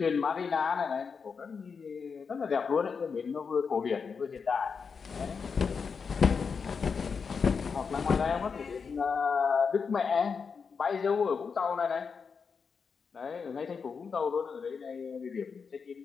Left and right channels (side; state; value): right; quieter; 5.7 dB